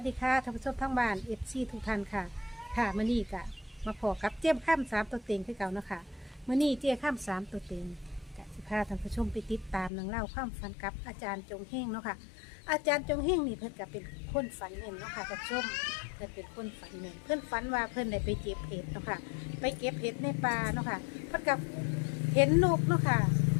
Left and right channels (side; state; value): right; drops out; at 9.9 s